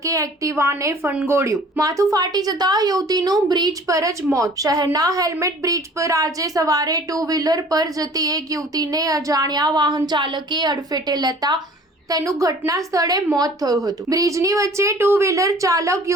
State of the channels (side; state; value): both; normal; correlation 0.49